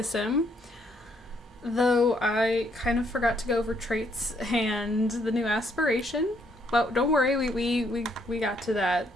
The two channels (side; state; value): both; normal; correlation 0.70